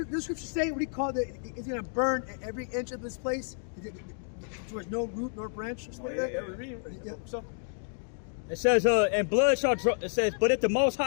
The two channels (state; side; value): silent; right; digital silence